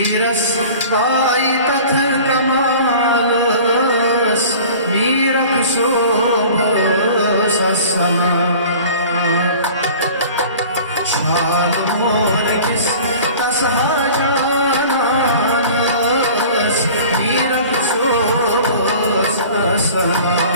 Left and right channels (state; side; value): inverted; both; correlation -0.43